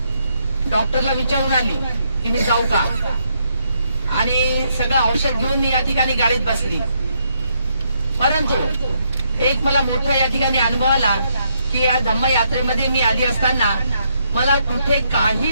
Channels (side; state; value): both; inverted; correlation -0.75